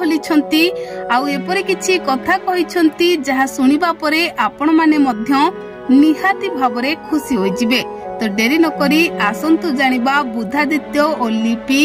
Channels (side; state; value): both; identical; correlation 1.00